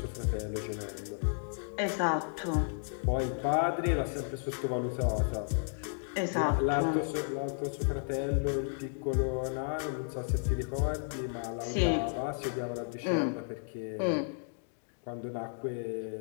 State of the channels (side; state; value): right; silent; digital silence